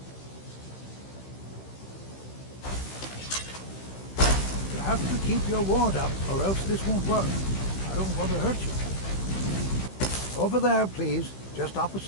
You have to keep your ward up, or else this won't work. I don't want to hurt you. Over there, please, just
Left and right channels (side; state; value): right; late; 15 ms